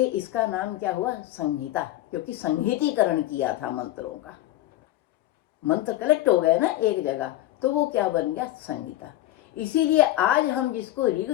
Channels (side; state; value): right; quieter; 15.1 dB